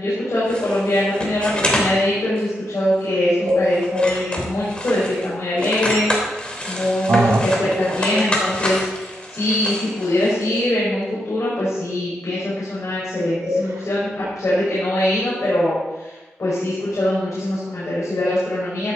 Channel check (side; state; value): both; normal; correlation 0.82